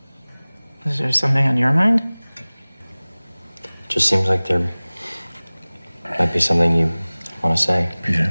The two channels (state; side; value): inverted; both; correlation -1.00